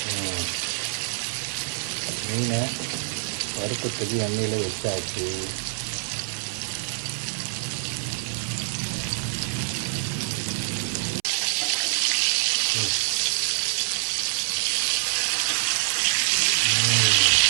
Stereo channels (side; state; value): left; silent; 61 dB below the other